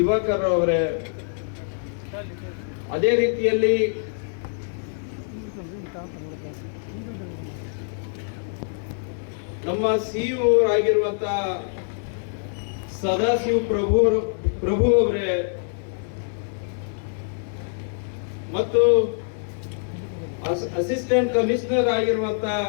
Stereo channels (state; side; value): silent; right; digital silence